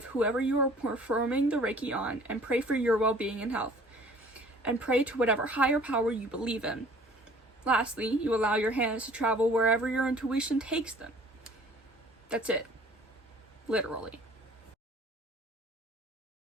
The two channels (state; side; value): normal; both; correlation 0.52